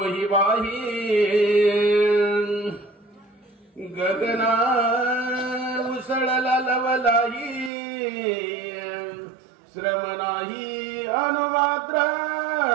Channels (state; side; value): drops out; left; at 7.7 s